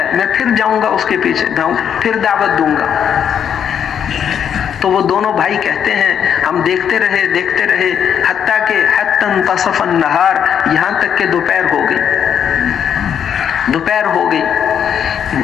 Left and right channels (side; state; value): right; quieter; 8.4 dB